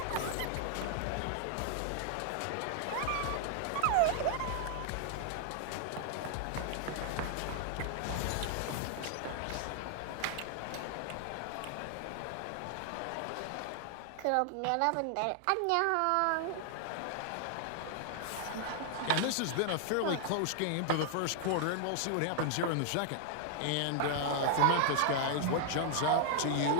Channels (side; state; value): both; different; correlation 0.00